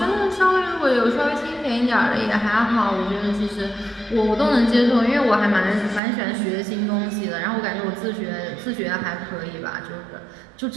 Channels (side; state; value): left; drops out; at 6.0 s